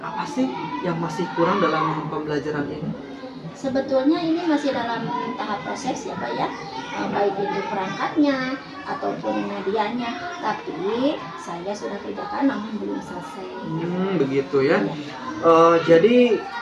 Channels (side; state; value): both; identical; correlation 1.00